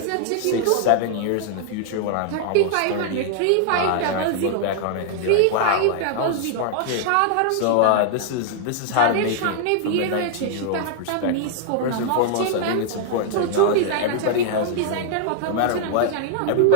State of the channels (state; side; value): different; both; correlation -0.01